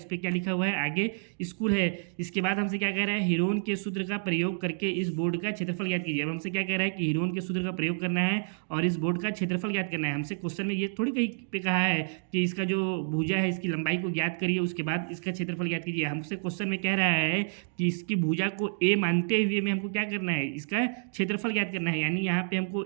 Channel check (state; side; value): silent; left; digital silence